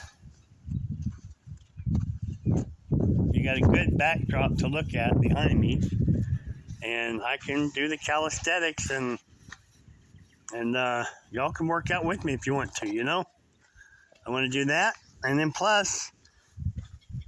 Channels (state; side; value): identical; both; correlation 1.00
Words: you got a good backdrop to look at behind me, and I can do the calisthenics, and y'all can work out with me if you want to, you know. I want to do that, and then plus